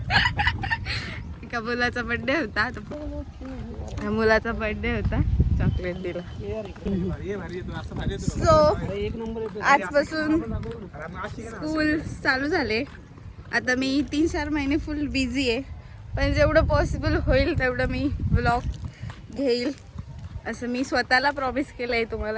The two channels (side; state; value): both; identical; correlation 1.00